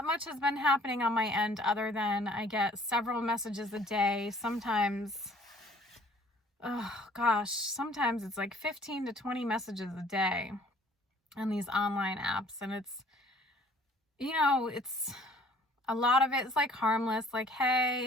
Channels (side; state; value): both; normal; correlation 0.55